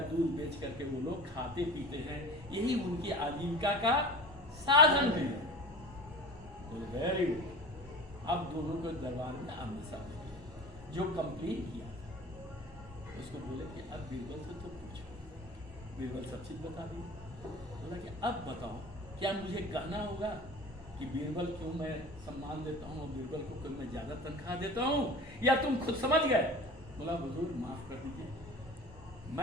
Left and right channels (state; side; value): normal; both; correlation 0.37